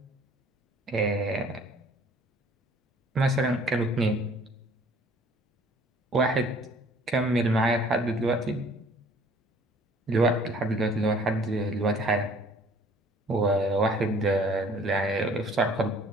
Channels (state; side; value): normal; both; correlation 0.55